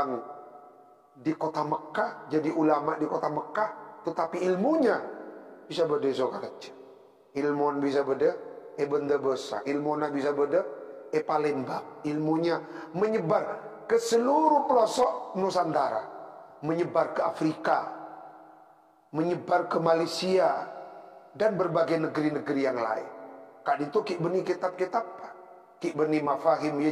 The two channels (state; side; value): identical; both; correlation 1.00